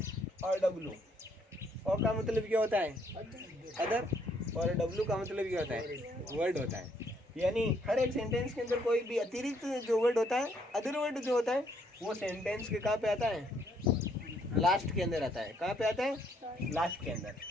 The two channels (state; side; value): normal; both; correlation 0.69